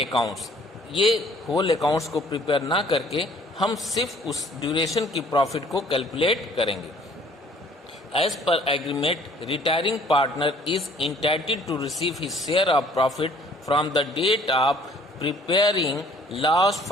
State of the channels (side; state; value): both; normal; correlation 0.57